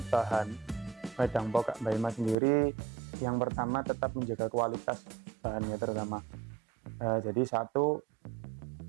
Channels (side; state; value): left; drops out; at 2.4 s